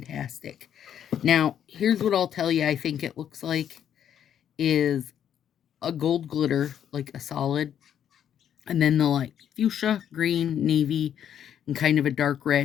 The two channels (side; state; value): right; quieter; 9.5 dB